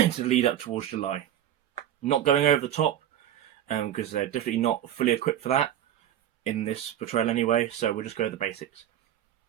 lead up towards July. Not going over the top, because they're definitely not fully equipped for that in this portrayal anyway, so we'll just go with the basics.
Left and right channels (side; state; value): left; quieter; 11.3 dB